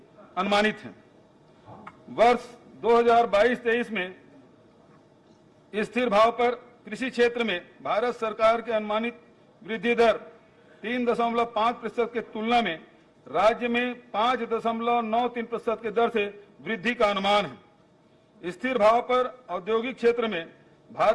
अनुमानित है। वर्ष 2022-23 में स्थिर भाव पर कृषि क्षेत्र में भारत सरकार के अनुमानित वृद्धि दर 3.5% के तुलना में राज्य में 5.93% के दर से वृद्धि का अनुमान है। स्थिर भाव पर औद्योगिक क्षेत्र में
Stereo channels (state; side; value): identical; both; correlation 1.00